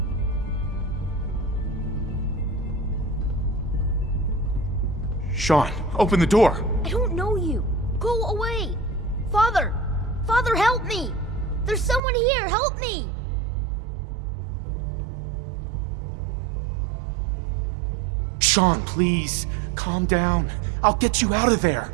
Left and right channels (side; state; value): left; drops out; at 12.0 s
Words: Sean, open the door! I don't know you. Go away. Father! Father, help me! There's someone here, help me! Sean, please, calm down. I'll get you out of there.